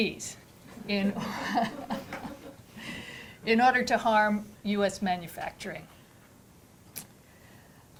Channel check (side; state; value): both; identical; correlation 1.00